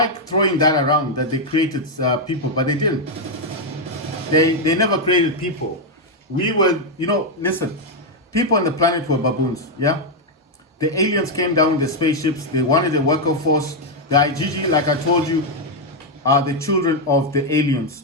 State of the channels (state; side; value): normal; both; correlation 0.01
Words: throwing that around, that they created people, but they didn't. They never created people. We were, listen, people on the planet were baboons, yeah? The aliens came down with the spaceships. They wanted a worker force. The IGG, like I told you, are the children of the